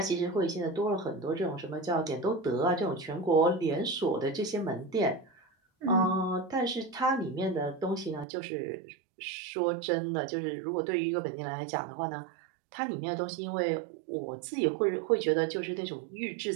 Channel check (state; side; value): drops out; left; at 8.2 s